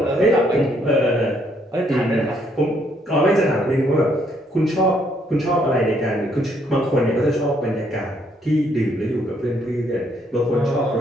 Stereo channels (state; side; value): normal; both; correlation 0.70